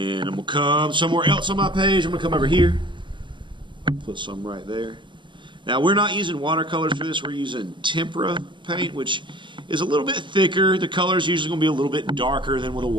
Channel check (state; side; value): late; left; 0.23 ms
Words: I'm going to come somewhere else on my page. I'm going to come over here. Put some right there. Now, we're not using watercolors for this. We're using tempera paint, which is a little bit thicker. The color is usually going to be a little bit darker than with a